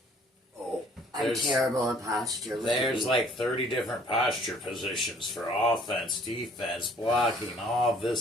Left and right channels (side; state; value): both; normal; correlation 0.57